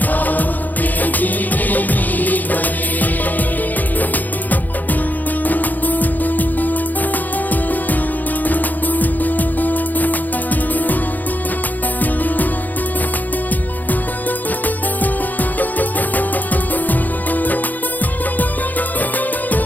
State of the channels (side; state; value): right; late; 0.083 ms